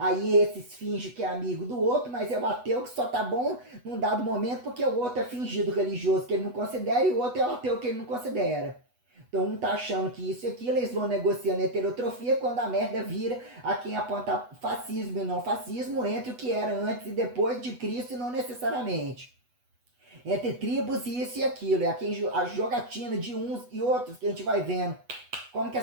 esses fingem que é amigo do outro, mas é o ateu que só tá bom num dado momento porque o outro é fingido religioso que ele não considera e o outro é o ateu que ele não considera. Então um tá achando que isso e aquilo, eles vão negociando heterotrofia, quando a merda vira a quem aponta fascismo e não fascismo, entre o que era antes e depois de Cristo, e não necessariamente entre tribos e isso e aquilo. É a jogatina de uns e outros que a gente vai vendo. Como que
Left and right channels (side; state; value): left; late; 8.1 ms